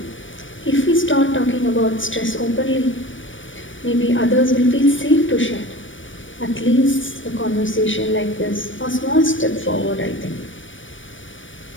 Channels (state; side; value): late; right; 0.56 ms